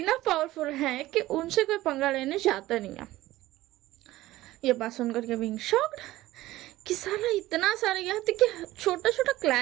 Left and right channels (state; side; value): quieter; left; 16.6 dB